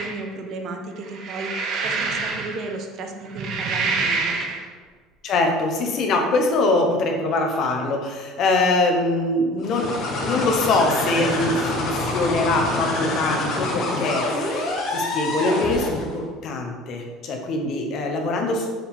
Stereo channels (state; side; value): normal; both; correlation 0.44